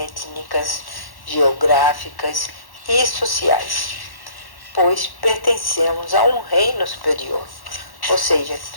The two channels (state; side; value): late; right; 1.1 ms